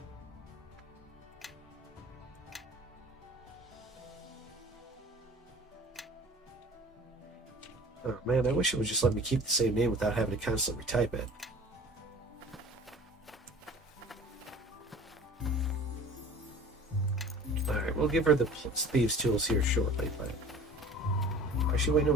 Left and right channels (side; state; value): both; normal; correlation 0.44